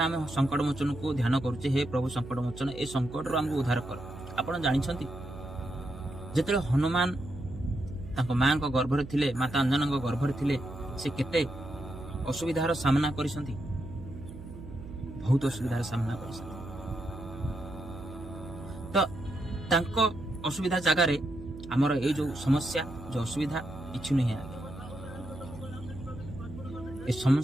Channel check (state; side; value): noise; right; hum, 13 dB below the sound